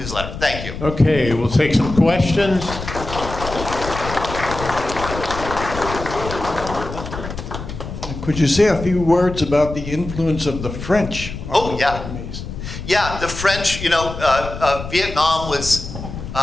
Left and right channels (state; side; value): noise; left; rumble, 9 dB below the sound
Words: Thank you. Okay, we'll take some questions. Could you say a few words about the influence of the French on the Vietnamese? Yeah, the French, Vietnam was